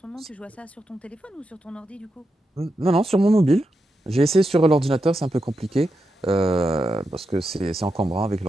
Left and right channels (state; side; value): normal; both; correlation 0.87